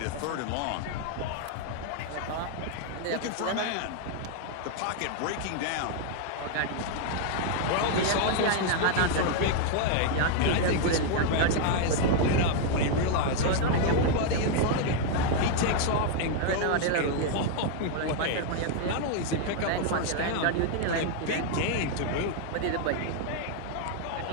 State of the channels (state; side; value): different; both; correlation 0.00